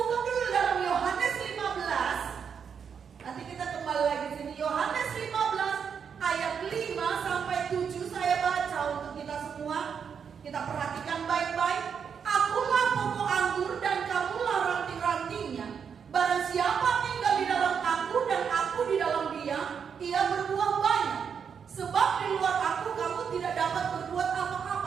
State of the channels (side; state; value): left; quieter; 6.9 dB